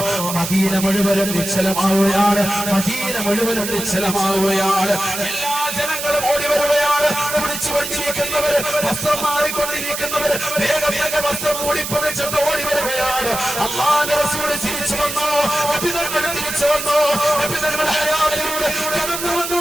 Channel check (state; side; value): noise; right; hiss, 5 dB below the sound